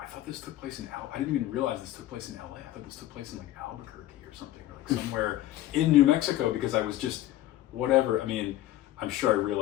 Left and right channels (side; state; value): right; quieter; 14.4 dB